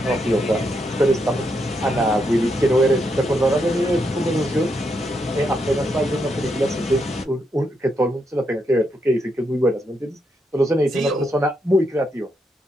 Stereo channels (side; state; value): both; normal; correlation 0.80